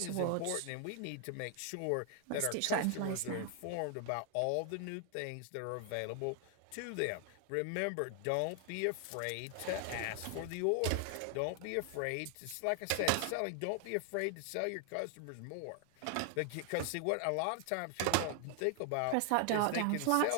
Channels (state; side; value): different; both; correlation 0.00